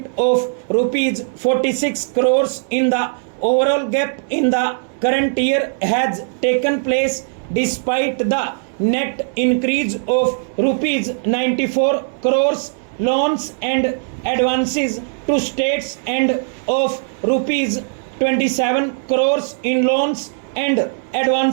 of rupees 46 crores in the overall gap in the current year has taken place despite the net increase of rupees 94 crores loans and advances to states and of rupees 27 crores in loans and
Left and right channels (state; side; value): silent; left; 65 dB below the other